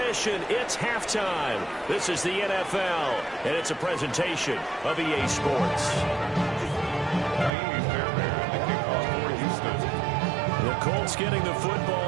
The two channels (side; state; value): left; drops out; at 7.5 s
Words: It's halftime. This is the NFL, and it's a presentation of EA Sports. The Colts getting the